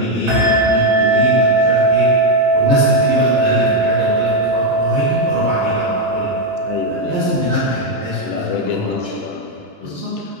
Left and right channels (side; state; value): left; late; 2.9 ms